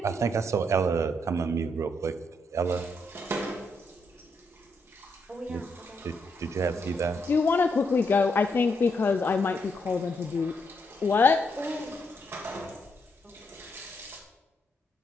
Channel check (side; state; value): both; normal; correlation 0.78